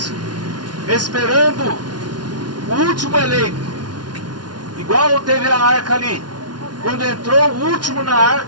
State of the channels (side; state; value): left; late; 0.70 ms